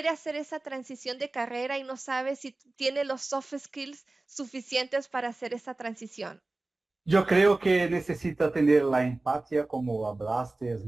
hacer esa transición de carrera y no sabe si tiene los soft skills suficientes para hacer esa transición? Yo creo que necesita tener la empatía, como hablaste, es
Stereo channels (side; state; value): left; quieter; 3.0 dB